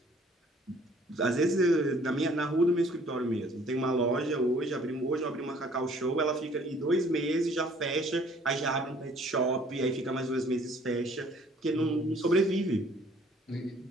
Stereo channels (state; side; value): normal; both; correlation 0.57